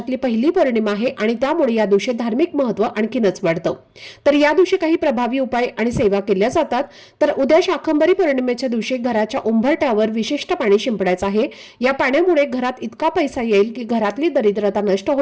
पहिली पौर्णिमा आहे आणि त्यामुळे या दिवशी धार्मिक महत्त्व आणखीनच वाढतं। तर या दिवशी काही प्रभावी उपाय आणि सेवा केल्या जातात। तर उद्या शाकंभरी पौर्णिमेच्या दिवशी घराच्या उंबरठ्यावर विशिष्ट पाणी शिंपडायचं आहे। या पाण्यामुळे घरात इतका पैसा येईल की घरातली दरिद्रता नष्ट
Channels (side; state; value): both; identical; correlation 1.00